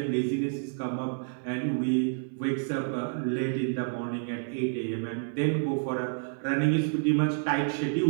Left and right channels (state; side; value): silent; left; 59 dB below the other